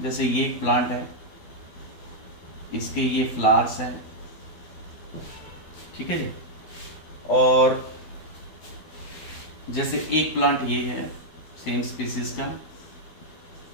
जैसे ये एक प्लांट है, इसके ये फ्लावर्स हैं, ठीक है जी। और जैसे एक प्लांट ये है सेम स्पीसीज का,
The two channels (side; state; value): right; late; 12 ms